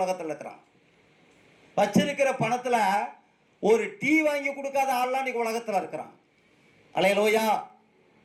இருக்கிறான். வச்சிருக்கிற பணத்தில் ஒரு டீ வாங்கி கொடுக்காத ஆள்லாம் இன்னைக்கு உலகத்தில் இருக்கிறான். அலையலோயா,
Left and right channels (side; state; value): both; identical; correlation 1.00